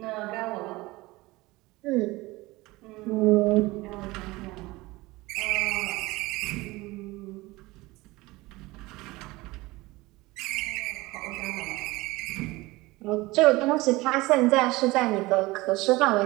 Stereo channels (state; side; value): quieter; left; 20.9 dB